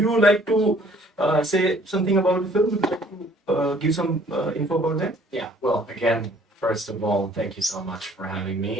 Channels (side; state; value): both; normal; correlation 0.58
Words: like to say something about the film? Would you like to give some info about that? Yeah, well, again, first of all, thank you so much for having